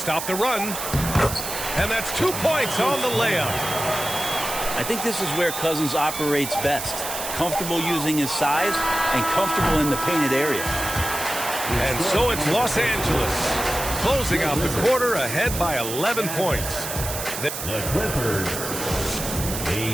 the run. And that's 2 points on the layup. I think this is where Cousins operates best. Comfortable using his size and comfortable in the painted area. And so it's Los Angeles closing out the quarter ahead by 11 points. The Clippers,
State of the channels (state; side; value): noise; right; hiss, 6 dB below the sound